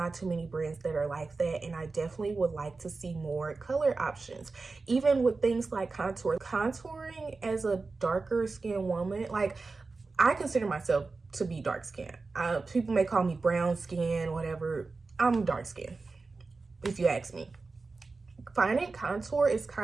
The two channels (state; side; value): quieter; left; 4.0 dB